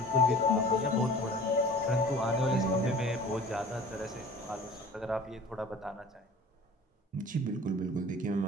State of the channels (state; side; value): normal; both; correlation 0.43